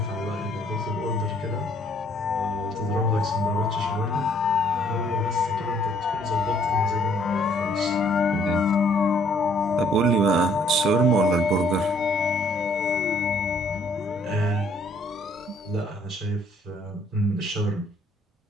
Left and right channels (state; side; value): normal; both; correlation 0.63